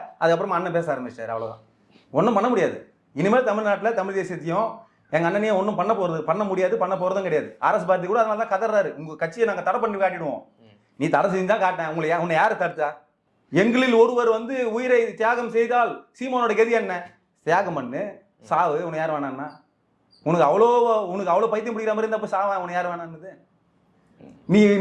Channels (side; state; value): both; identical; correlation 1.00